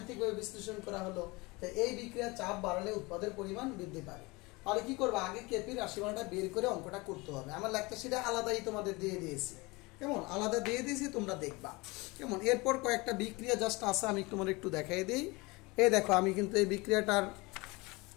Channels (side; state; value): right; quieter; 24.5 dB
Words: বিশ্লেষণ করা হলো যে এই বিক্রিয়া চাপ বাড়লে উৎপাদের পরিমাণ বৃদ্ধি পাবে। তাহলে কি করবো? আগে কেপি রাশিমানটা বের করে অঙ্কটা করতে হবে। আমার লেখটা সেটা আলাদাই তোমাদের দিয়ে দিয়েছি। কেমন? আলাদা দিয়ে দিয়েছি, তোমরা দেখবা। কেমন? এরপর কয়েকটা বিক্রিয়া জাস্ট আছে, আমি তোমার একটু দেখাই দিই। এই দেখো, আমি কিন্তু এই বিক্রিয়াটার